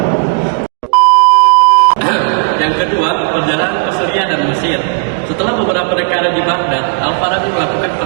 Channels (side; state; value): left; quieter; 39.9 dB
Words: Yang kedua, perjalanan ke Syria dan Mesir. Setelah beberapa dekade di Baghdad, Al-Farabi melakukan